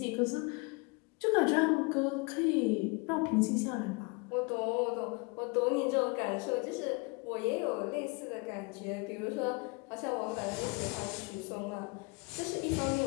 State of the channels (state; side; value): quieter; right; 29.6 dB